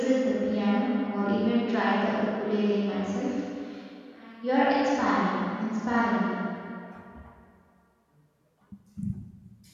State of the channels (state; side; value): identical; both; correlation 1.00